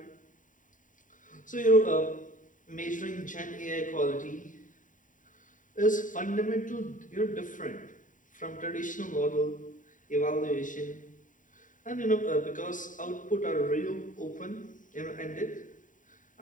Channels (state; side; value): late; right; 0.38 ms